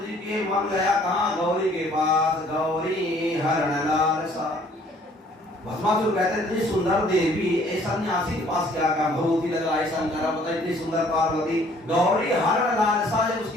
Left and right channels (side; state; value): both; normal; correlation 0.58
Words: जी के मन गया कहाँ, गौरी के पास, गौरी हरण लालसा। भस्मासुर कहते इतनी सुंदर देवी ऐसा सन्यासी के पास क्या काम, भगवती लग रहा है शंकर पता इतनी सुंदर पार्वती। गौरी हरण लालसा जब